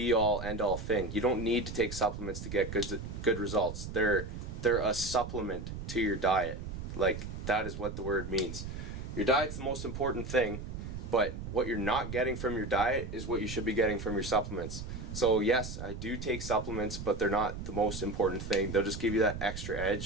end-all thing. You don't need to take supplements to get good results. They're a supplement to your diet. Like, that is what the word means. Your diet's the most important thing, but what you're not getting from your diet is what you should be getting from your supplements. So yes, I do take supplements, but they're not the most important thing. They'll just give you that extra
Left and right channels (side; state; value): right; noise; rumble, 8 dB below the sound